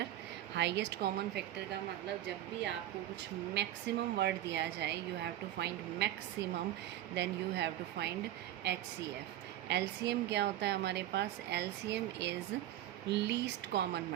highest common factor का मतलब जब भी आपको कुछ मैक्सिमम वर्ड दिया जाए you have to find maximum, then you have to find HCF। LCM क्या होता है हमारे पास? LCM is least common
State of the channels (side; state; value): left; quieter; 13.3 dB